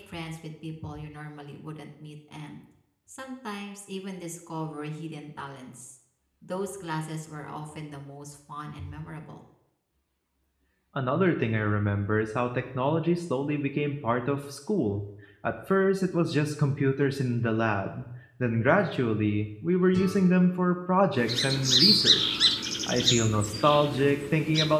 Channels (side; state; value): both; identical; correlation 1.00